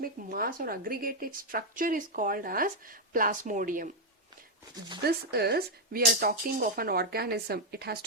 mass or aggregated structure is called as plasmodium. This is, we are talking of an organism. It has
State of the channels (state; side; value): normal; both; correlation 0.00